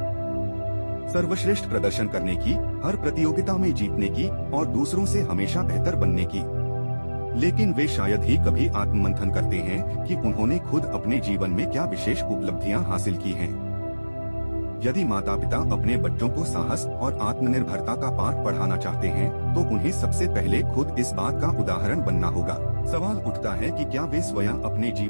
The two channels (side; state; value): both; inverted; correlation -1.00